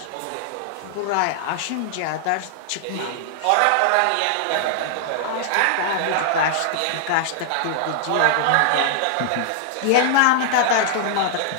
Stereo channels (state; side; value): different; both; correlation -0.01